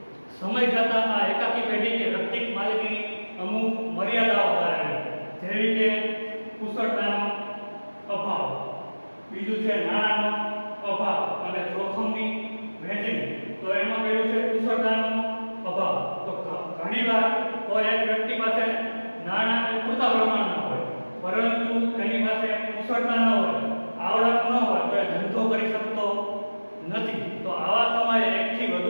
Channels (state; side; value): inverted; both; correlation -1.00